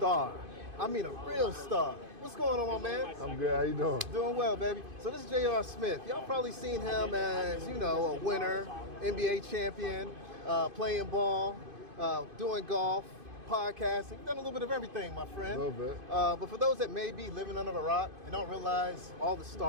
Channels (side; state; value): left; late; 2.5 ms